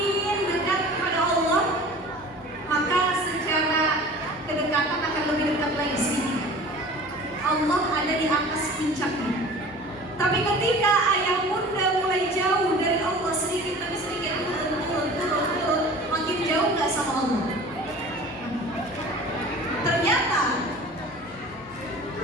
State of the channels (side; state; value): both; normal; correlation 0.42